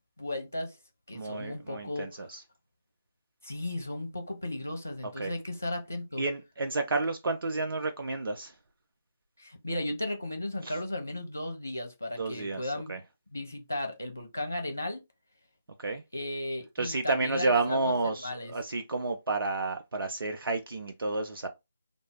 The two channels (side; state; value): both; inverted; correlation -0.72